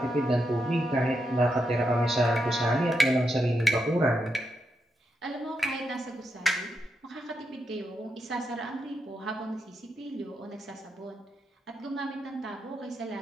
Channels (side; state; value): both; normal; correlation 0.83